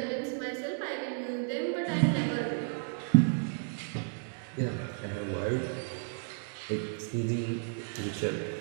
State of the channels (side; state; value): left; silent; 56 dB below the other